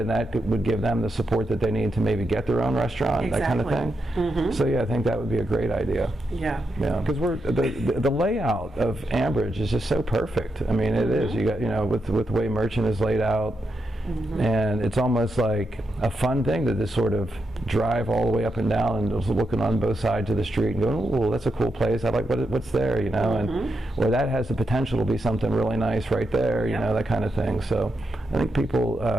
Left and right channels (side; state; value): both; normal; correlation 0.84